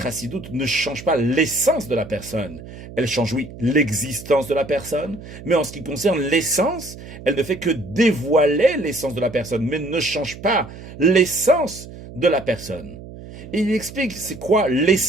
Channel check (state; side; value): noise; right; hum, 15 dB below the sound